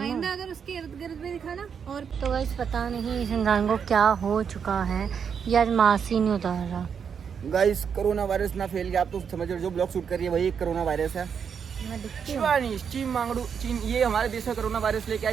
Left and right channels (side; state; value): left; quieter; 7.0 dB